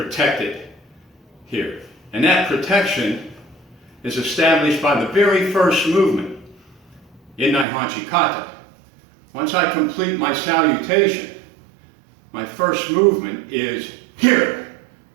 here. And that protection is established by the very first movement in Naihanchi Kata. Once I complete my salutation, my first movement is here,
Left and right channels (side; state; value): left; drops out; at 7.7 s